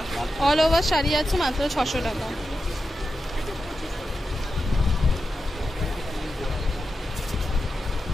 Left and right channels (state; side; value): normal; both; correlation 0.90